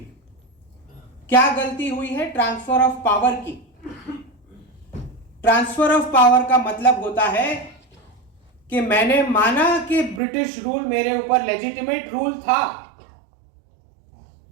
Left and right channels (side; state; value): left; drops out; at 10.2 s